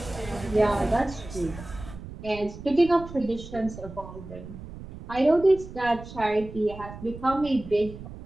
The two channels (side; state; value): right; noise; rumble, 13 dB below the sound